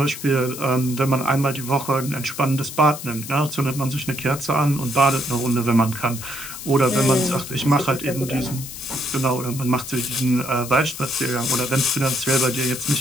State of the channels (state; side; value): noise; left; hiss, 11 dB below the sound